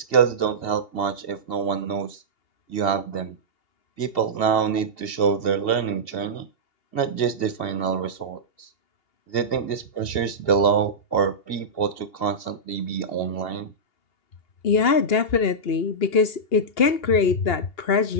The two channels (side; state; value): right; late; 2.8 ms